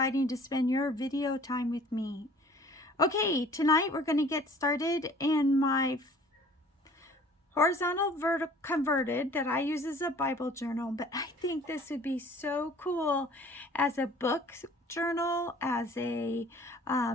to spend your video time with me. Okay, tonight we're going to get started in my horizontal converted that I use as a Bible journal, but I think this would be so cool as a book journal, as a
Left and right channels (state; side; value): normal; both; correlation 0.51